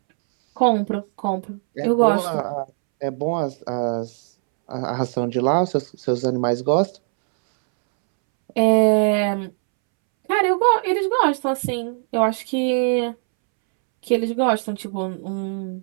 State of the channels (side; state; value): left; silent; 65 dB below the other